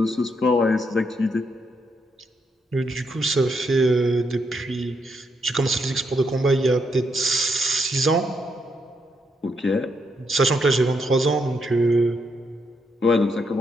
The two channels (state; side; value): normal; both; correlation 0.78